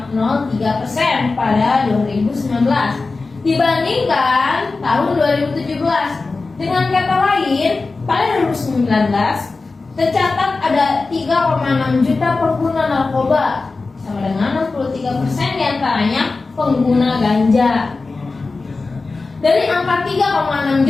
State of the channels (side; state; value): right; quieter; 3.8 dB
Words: pada 2019 dibandingkan tahun 2017. Dengan kata lain, pada 2019 tercatat ada 3,6 juta pengguna narkoba, sama dengan 63% diantaranya pengguna ganja. Dari angka 3,6